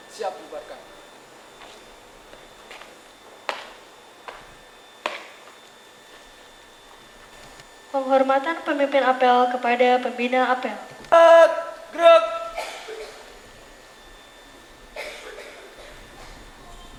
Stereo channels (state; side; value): identical; both; correlation 1.00